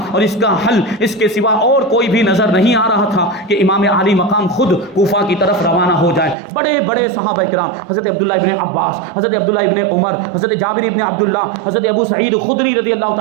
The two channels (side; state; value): left; drops out; at 6.4 s